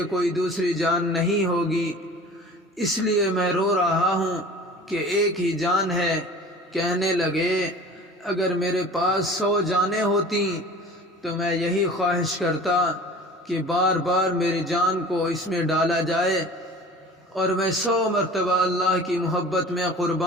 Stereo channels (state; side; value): normal; both; correlation 0.42